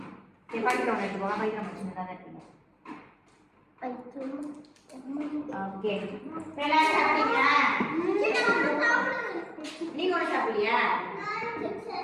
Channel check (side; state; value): both; identical; correlation 1.00